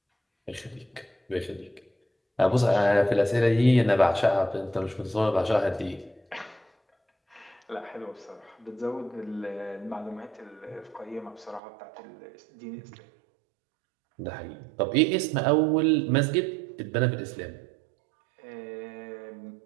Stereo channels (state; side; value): drops out; left; at 11.6 s